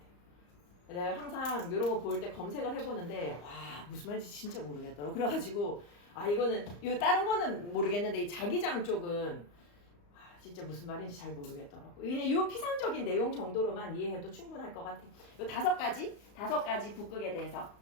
내가 항상 이런 거 볼 때 검색을 해보는데 와 무슨 말인지 진짜 모르겠더라고. 그래가지고 아 이거는 이 다른 거는 모르겠는데 이 자기장 쪽은 진짜 무슨 말인지 잘 모르겠더라고. 이 피상적인 내용 정도로만 이해해도 충분할 것 같아. 이 다섯 가지 북극에 대해서.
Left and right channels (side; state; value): right; late; 34 ms